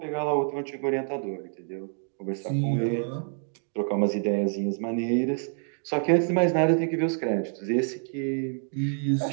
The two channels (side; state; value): left; silent; 60 dB below the other